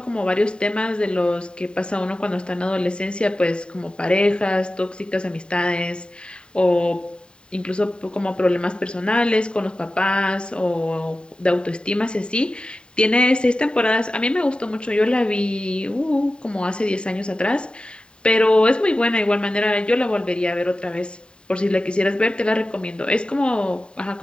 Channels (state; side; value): late; right; 0.051 ms